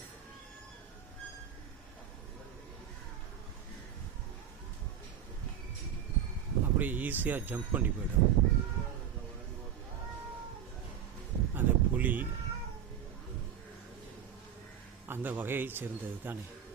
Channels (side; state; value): left; quieter; 9.1 dB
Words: அப்படியே ஈஸியாக ஜம்ப் பண்ணி போயிடும். அந்த புலி அந்த வகையை சேர்ந்தது தானே.